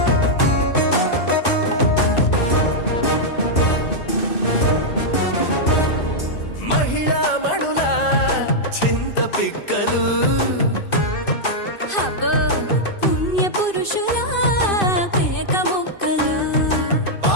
మహిళా మడుల చింత పిక్కలు హబ్బో పుణ్య పురుషుల పేక మొక్కలు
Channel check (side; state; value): right; late; 2.6 ms